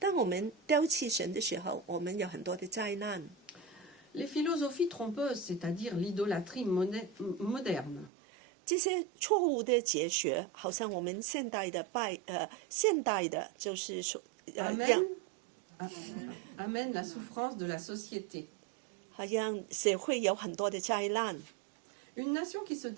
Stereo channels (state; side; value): drops out; left; at 8.1 s